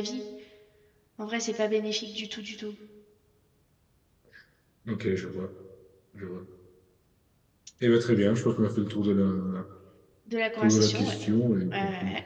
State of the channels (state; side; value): identical; both; correlation 1.00